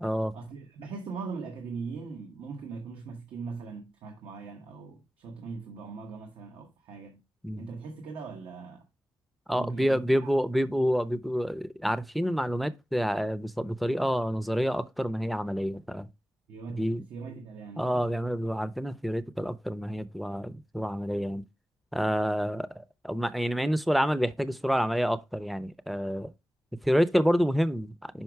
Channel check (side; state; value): both; normal; correlation 0.96